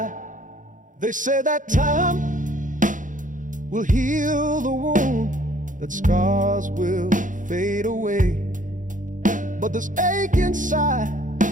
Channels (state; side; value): late; left; 0.38 ms